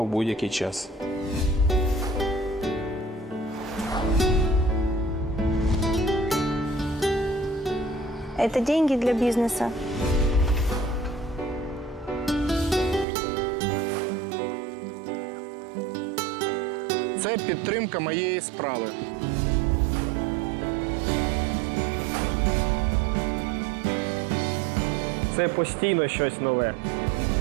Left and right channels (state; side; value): drops out; left; at 13.1 s